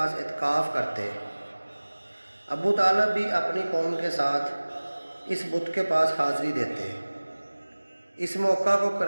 اعتکاف کرتے۔ ابو طالب بھی اپنی قوم کے ساتھ اس بت کے پاس حاضری دیتے۔ اس موقع کو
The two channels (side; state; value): both; inverted; correlation -1.00